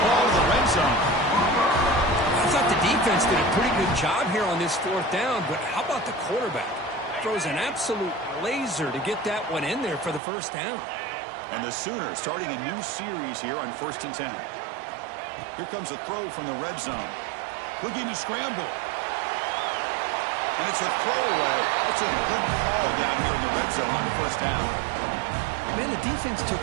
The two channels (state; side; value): drops out; left; at 10.2 s